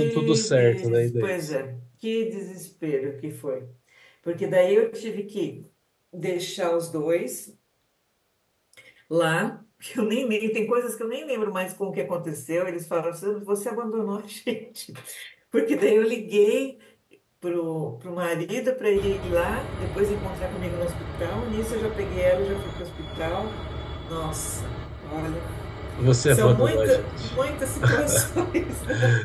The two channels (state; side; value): identical; both; correlation 1.00